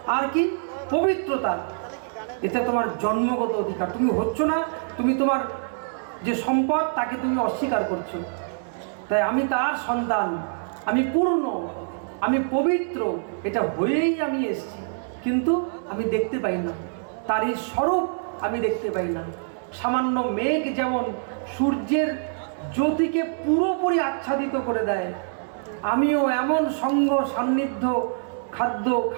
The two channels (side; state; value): left; silent; 62 dB below the other